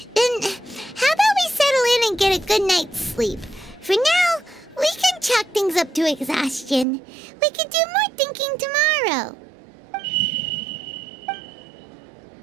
Then, how about we settle in and get a good night's sleep? For now, we can chalk things up to exhaustion. We can do more thinking tomorrow.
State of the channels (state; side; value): drops out; left; at 6.9 s